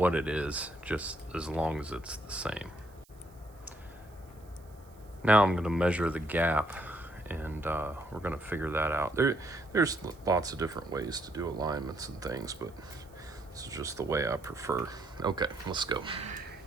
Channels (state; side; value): noise; right; hiss, 29 dB below the sound